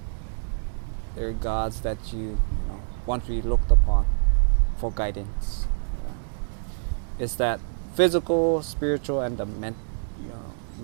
They're gods that you want to be looked upon for guidance. It's that physical, spiritual, and the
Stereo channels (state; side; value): silent; left; digital silence